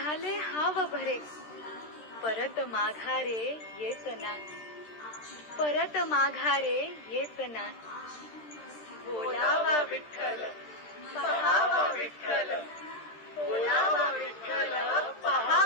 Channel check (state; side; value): late; right; 13 ms